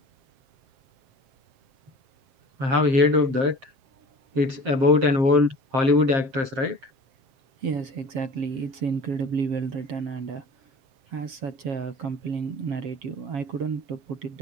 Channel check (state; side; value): late; left; 7.5 ms